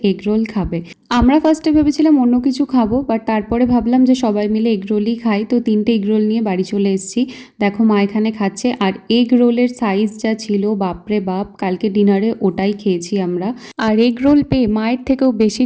এগরোল খাবে। আমরা ফার্স্টে ভেবেছিলাম অন্য কিছু খাবো, বাট তারপরে ভাবলাম যে সবাই মিলে এগরোলই খাই। তো 3টে এগরোল নিয়ে বাড়ি চলে এসেছি। দেখো মা এখানে খাচ্ছে। আর এগরোলের সাইজ যা ছিল, বাপরে বাপ, কালকে ডিনারে ওটাই খেয়েছি আমরা। আর এগরোল পেয়ে মায়ের থেকেও বেশি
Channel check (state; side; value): identical; both; correlation 1.00